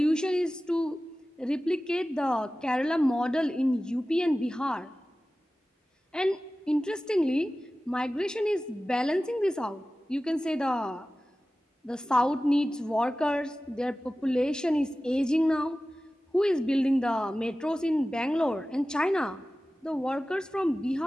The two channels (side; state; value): both; normal; correlation 0.96